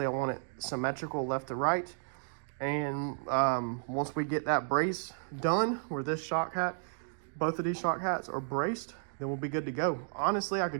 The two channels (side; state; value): left; silent; digital silence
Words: I want it symmetrical left to right. And once we get that brace done, where this shock hat, both of these shock hats are braced, then we'll be good to go. Honestly, I